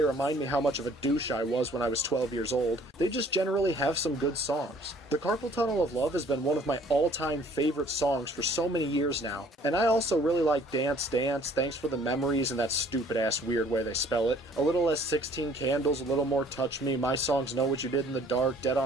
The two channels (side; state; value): both; normal; correlation 0.57